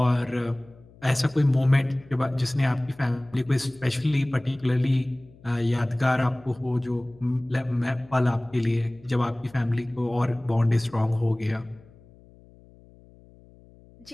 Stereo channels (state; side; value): noise; left; hum, 25 dB below the sound